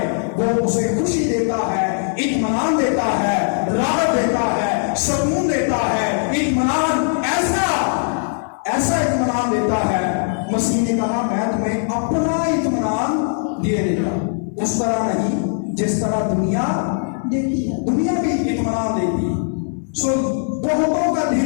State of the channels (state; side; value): silent; right; digital silence